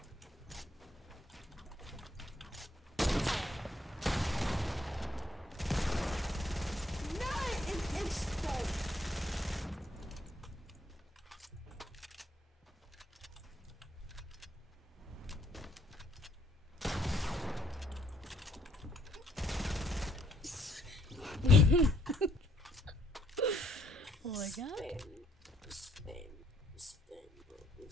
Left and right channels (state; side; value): normal; both; correlation 0.68